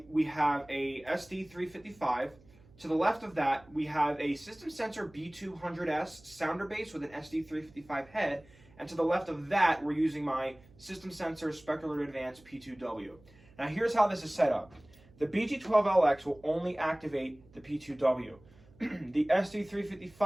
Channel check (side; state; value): right; noise; hum, 26 dB below the sound